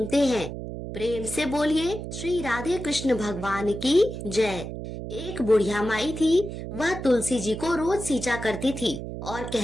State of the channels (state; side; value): noise; right; hum, 8 dB below the sound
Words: हैं। प्रेम से बोलिए श्री राधे कृष्ण भगवान की जय। एक बुढ़िया माई थी, वह तुलसी जी को रोज सींचा करती थी और